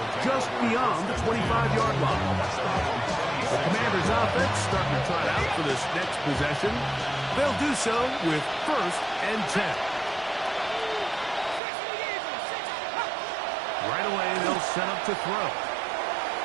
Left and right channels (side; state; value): left; drops out; at 11.6 s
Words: just beyond the 25-yard line. The Commanders' offense starting to trot out for this next possession. They'll do so with first and 10. Right away, they'll set up to throw.